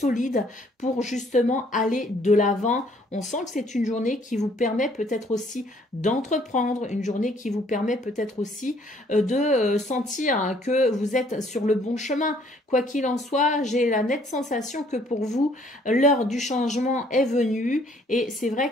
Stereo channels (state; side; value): normal; both; correlation 0.62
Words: pour justement aller de l'avant. On sent que c'est une journée qui vous permet peut-être aussi d'entreprendre, une journée qui vous permet peut-être aussi de sentir que vous êtes sur le bon chemin. Quoi qu'il en soit, j'ai la nette sensation que pour vous, l'heure du changement est venue et c'est